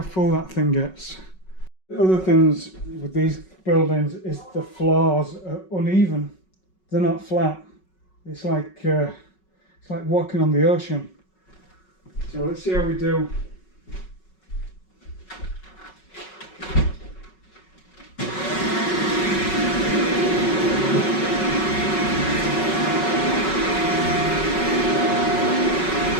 full that thing gets. The other things with these buildings is the floors are uneven. They're not flat. It's like walking on the ocean. So let's see how we do.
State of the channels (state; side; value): late; right; 5.4 ms